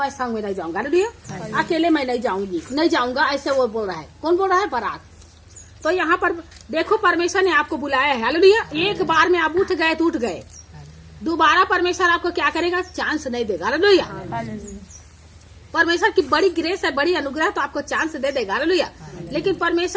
संग में नहीं जाऊंगा। हालेलुया। अकेले मैं नहीं जाऊंगा, ऐसे वो बोल रहा है। कौन बोल रहा है? बराक। तो यहाँ पर देखो परमेश्वर ने आपको बुलाया है। हालेलुया। एक बार में आप उठ गए तो उठ गए, दोबारा परमेश्वर आपको क्या करेगा, चांस नहीं देगा। हालेलुया। परमेश्वर की बड़ी ग्रेस है, बड़ी अनुग्रह, तो आपको चांस दे देगा। हालेलुया। लेकिन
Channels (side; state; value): both; identical; correlation 1.00